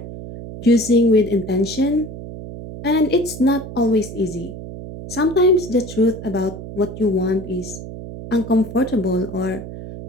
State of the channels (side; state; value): right; noise; hum, 11 dB below the sound